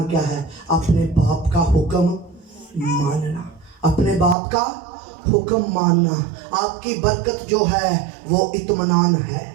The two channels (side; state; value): left; drops out; at 4.4 s